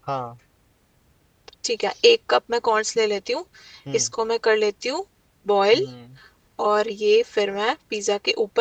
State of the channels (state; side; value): identical; both; correlation 1.00